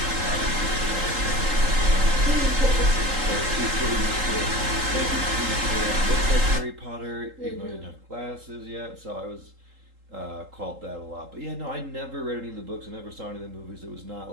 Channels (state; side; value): late; left; 3.8 ms